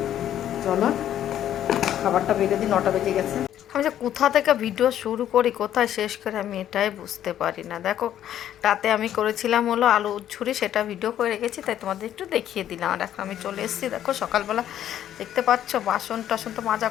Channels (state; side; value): quieter; right; 11.1 dB